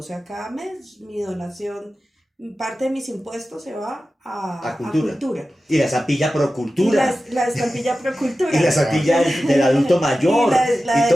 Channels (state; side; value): normal; both; correlation 0.94